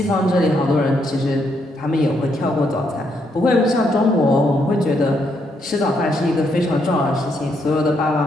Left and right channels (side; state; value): both; normal; correlation 0.76